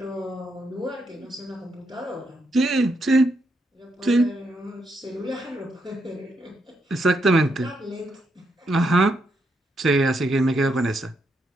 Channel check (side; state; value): both; normal; correlation 0.79